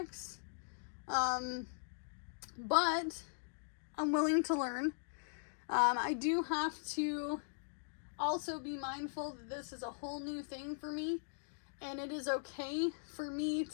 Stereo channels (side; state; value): right; silent; digital silence